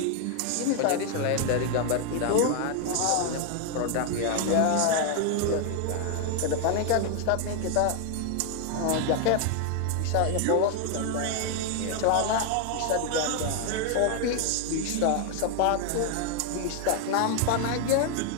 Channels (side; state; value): both; different; correlation 0.00